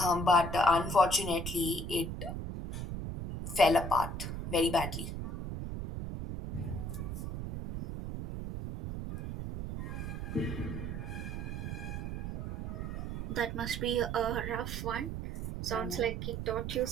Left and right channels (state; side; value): noise; right; rumble, 5 dB below the sound